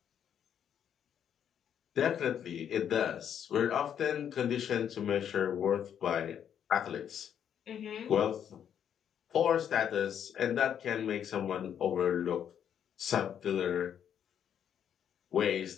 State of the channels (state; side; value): quieter; right; 9.0 dB